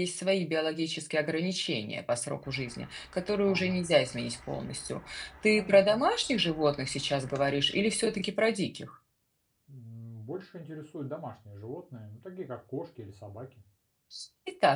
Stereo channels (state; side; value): identical; both; correlation 1.00